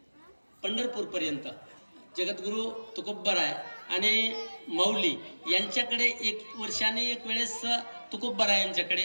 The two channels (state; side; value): inverted; both; correlation -1.00